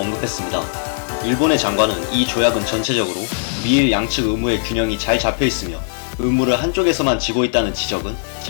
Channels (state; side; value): silent; right; digital silence